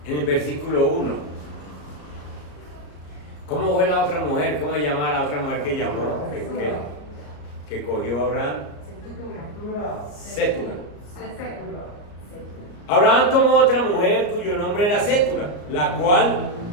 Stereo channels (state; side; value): late; right; 34 ms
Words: En el versículo 1. ¿Cómo fue la otra mujer? ¿Cómo se llama la otra mujer que llamó? Que cogió a Abraham. Sétura. Abraham tomó otra mujer cuyo nombre era Sétura, la cual